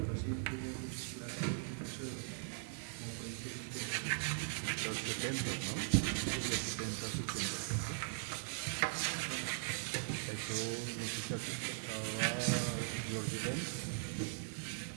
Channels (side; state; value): left; silent; 51 dB below the other